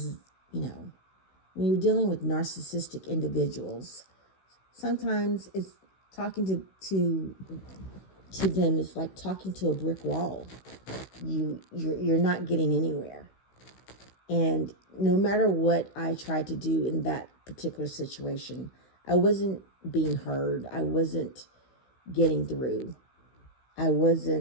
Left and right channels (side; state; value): right; late; 16 ms